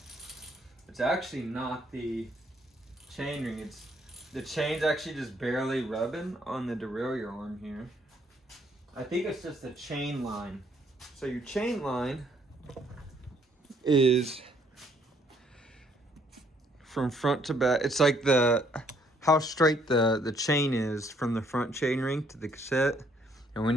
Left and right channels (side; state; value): both; normal; correlation 0.67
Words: It's actually not the chain ring, it's the chain's actually just barely rubbing on the derailleur arm here. I think it's just the chain line. So your chain line is from front to back. It's like how straight the chain is from the front chain ring to the cassette. And